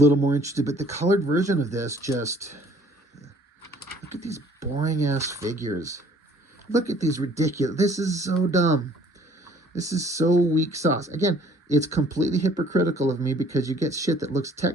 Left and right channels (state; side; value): normal; both; correlation 0.57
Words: more interested. But the colored version of this, just look at these boring ass figures. Look at these ridiculous. This is so dumb. This is so weak sauce. Again, it's completely hypocritical of me because you get shit that looks